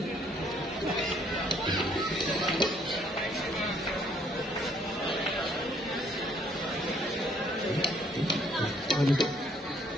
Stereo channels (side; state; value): both; normal; correlation 0.64